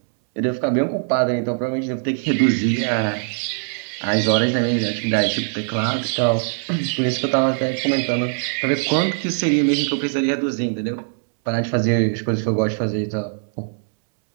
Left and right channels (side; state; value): left; silent; 65 dB below the other